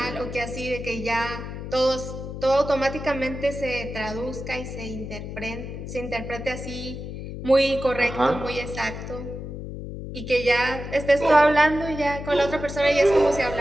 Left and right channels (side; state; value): left; noise; hum, 8 dB below the sound